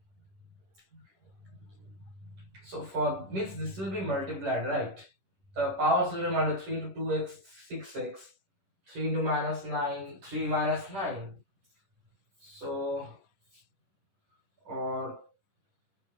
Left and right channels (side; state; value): left; late; 10 ms